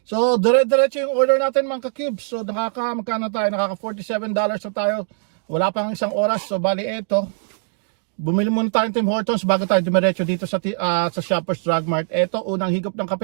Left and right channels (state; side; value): silent; left; digital silence